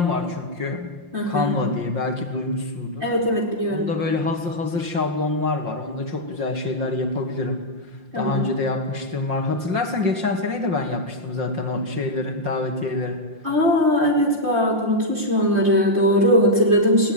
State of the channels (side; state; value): left; late; 5.7 ms